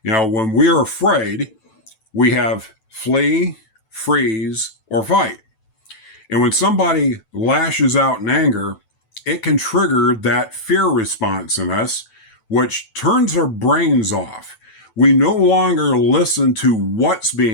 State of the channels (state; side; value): late; right; 9.1 ms